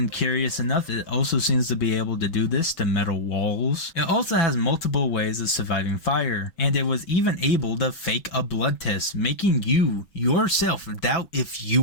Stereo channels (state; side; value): late; right; 6.0 ms